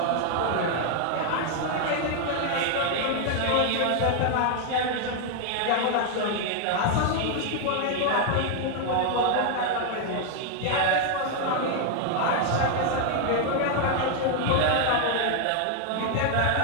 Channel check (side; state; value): both; different; correlation 0.00